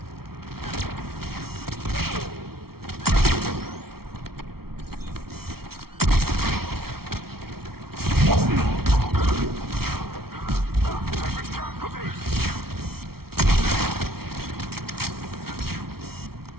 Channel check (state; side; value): late; left; 0.94 ms